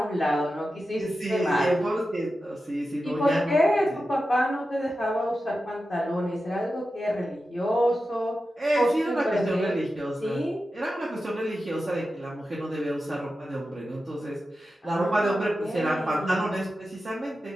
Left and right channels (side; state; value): both; normal; correlation 0.92